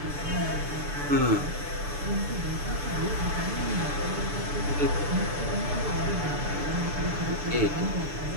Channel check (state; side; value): late; left; 6.8 ms